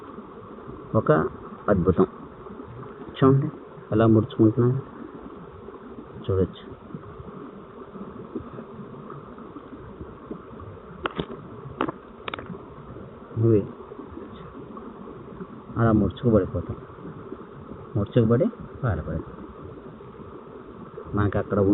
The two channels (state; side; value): identical; both; correlation 1.00